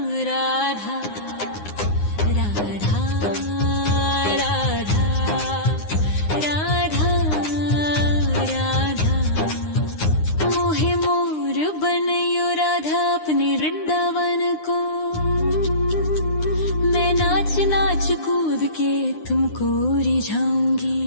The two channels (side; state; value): right; late; 9.7 ms